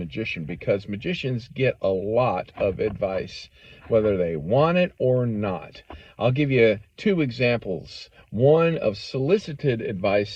because magicians get a lot of advice, whether they want it or not. I'll give you two examples, one of solicited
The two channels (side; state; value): both; identical; correlation 1.00